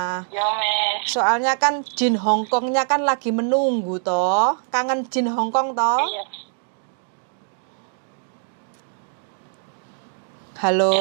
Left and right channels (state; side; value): silent; left; 61 dB below the other